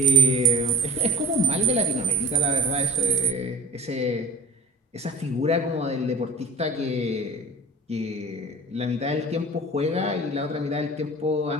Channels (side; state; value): both; normal; correlation 0.44